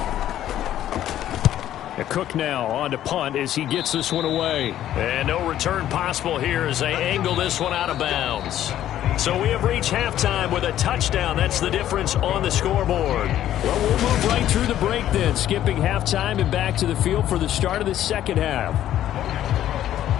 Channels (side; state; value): right; quieter; 12.0 dB